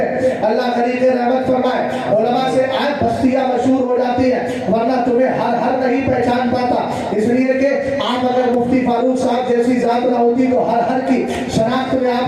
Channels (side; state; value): both; identical; correlation 1.00